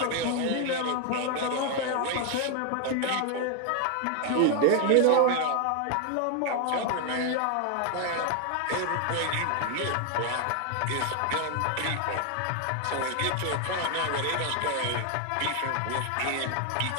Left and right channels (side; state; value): both; different; correlation 0.00